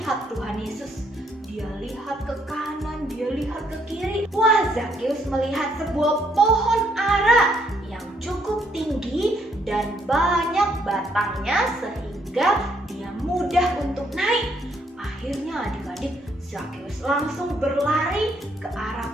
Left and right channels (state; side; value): normal; both; correlation 0.71